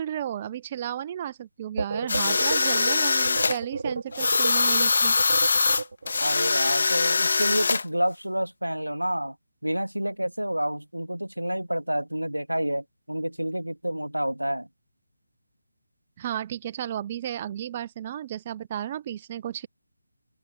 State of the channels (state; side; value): inverted; both; correlation -0.91